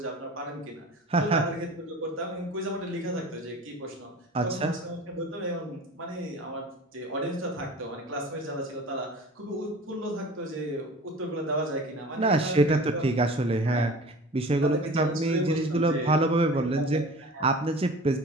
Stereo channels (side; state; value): both; normal; correlation 0.40